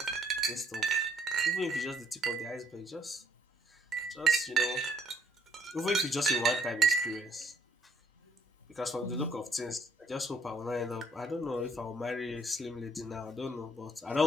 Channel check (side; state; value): both; normal; correlation 0.66